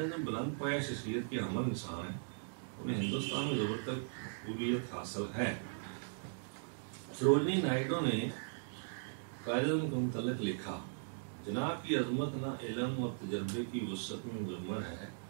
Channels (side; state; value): left; silent; digital silence